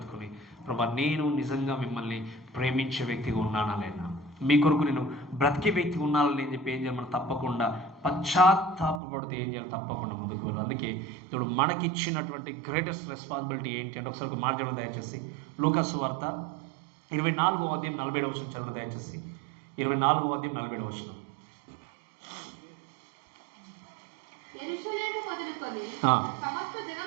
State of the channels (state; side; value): drops out; left; at 9.0 s